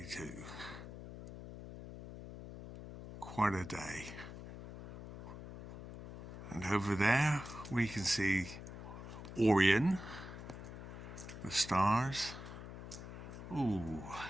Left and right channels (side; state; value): left; noise; hum, 11 dB below the sound